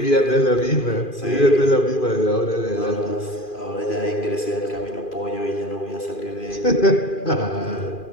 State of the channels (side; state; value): right; late; 2.4 ms